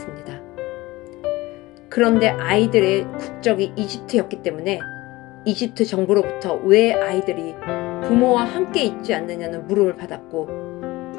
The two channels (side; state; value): right; quieter; 20.0 dB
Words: 그런데 아이들의 국적이 이집트였기 때문에 이집트 정부로부터 왜 아이들이 부모와 함께 있지 않느냐는 물음을 받았고